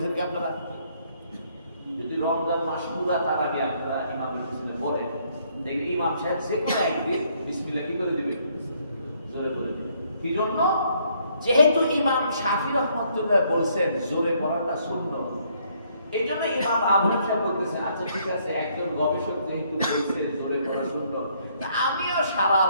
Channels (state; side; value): inverted; both; correlation -0.68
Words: কি আপনারা? যদি রমজান মাস পুরা তারাবি আপনারা ইমামের বিসমিল্লাহ পড়েন, দেখবেন ইমাম সাহেব যে কোনো একদিন বিসমিল্লাহ কি করে দিবে? জোরে করে দিবে। কি জন্য? যেহেতু ইমাম শাফি রাহমাতুল্লাহ বলছেন জোরে পড়াটা সুন্নাত, এই জন্য ইমাম আবু হানিফা বলতেছেন আচ্ছা ঠিক আছে, একজন গবেষক যেহেতু বলছেন জোরে পড়া সুন্নাত, আমিও সারা